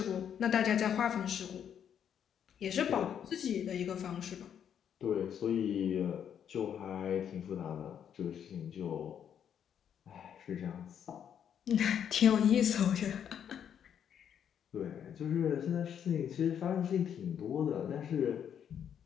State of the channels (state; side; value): quieter; right; 8.7 dB